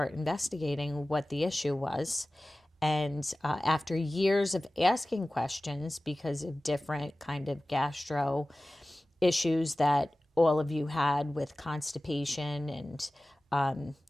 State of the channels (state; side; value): normal; both; correlation 0.97